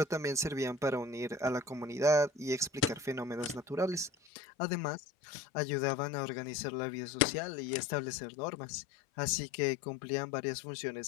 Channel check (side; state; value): right; drops out; at 4.1 s